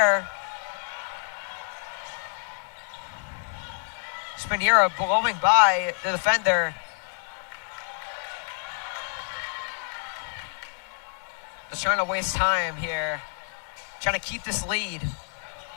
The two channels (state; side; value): silent; right; digital silence